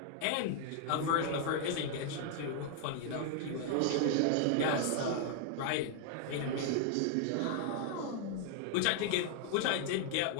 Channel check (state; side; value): different; both; correlation 0.00